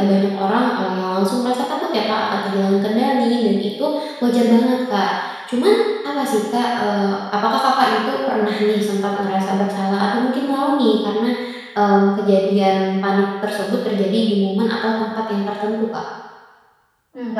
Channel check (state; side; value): identical; both; correlation 1.00